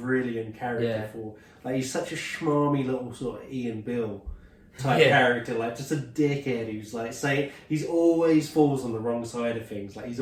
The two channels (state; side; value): identical; both; correlation 1.00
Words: character he's such a schmarmy little sort of Ian Bill type character, like just a dickhead who's like he's always falls on the wrong side of things. Like, he's